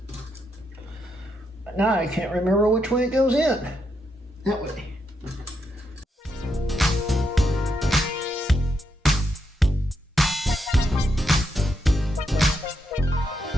Now I can't remember which way it goes in. That way.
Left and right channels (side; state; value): both; normal; correlation 0.80